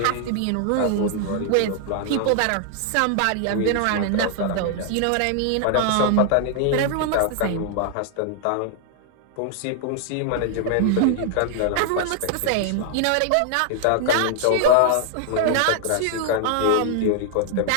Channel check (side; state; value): both; different; correlation 0.00